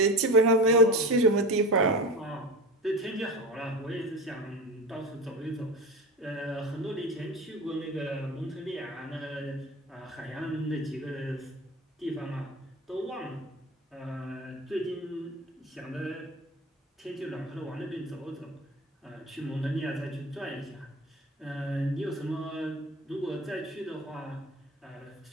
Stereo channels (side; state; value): both; normal; correlation 0.31